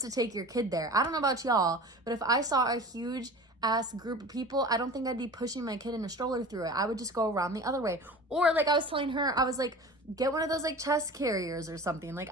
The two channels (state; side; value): normal; both; correlation 0.37